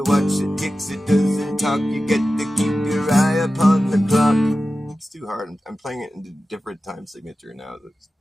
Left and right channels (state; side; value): normal; both; correlation 0.94